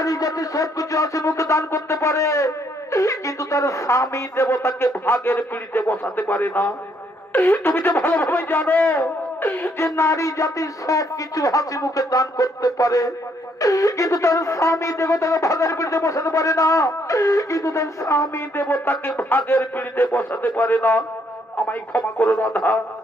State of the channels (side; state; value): both; normal; correlation 0.70